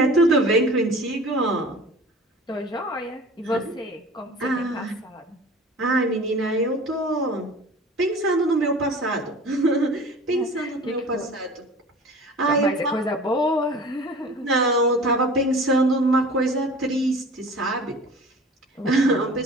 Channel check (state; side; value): normal; both; correlation 0.41